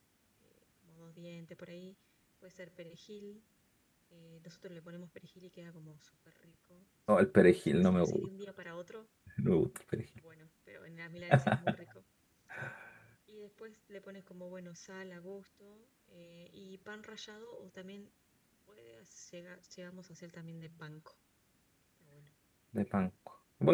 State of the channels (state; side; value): identical; both; correlation 1.00